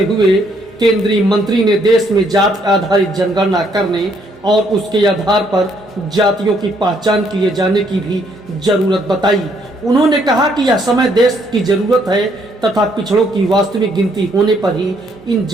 हुए केंद्रीय मंत्री ने देश में जाति आधारित जनगणना करने और उसके आधार पर जातियों की पहचान किए जाने की भी जरूरत बताई। उन्होंने कहा कि यह समय देश की जरूरत है तथा पिछड़ों की वास्तविक गिनती होने पर ही इन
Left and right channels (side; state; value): both; normal; correlation 0.69